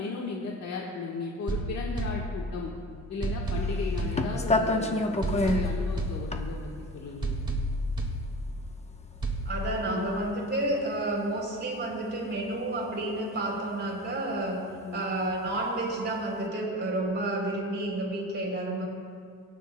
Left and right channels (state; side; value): normal; both; correlation 0.34